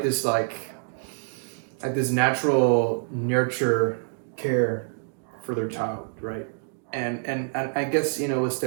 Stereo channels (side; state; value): left; silent; digital silence